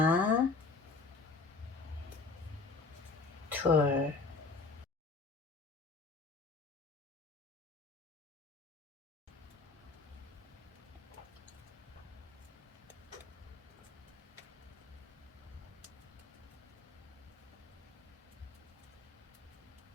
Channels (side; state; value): right; quieter; 3.9 dB